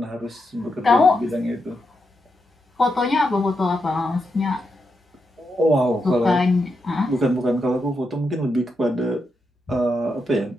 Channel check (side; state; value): both; normal; correlation 0.84